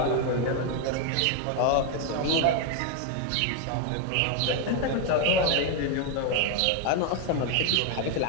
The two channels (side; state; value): both; different; correlation 0.01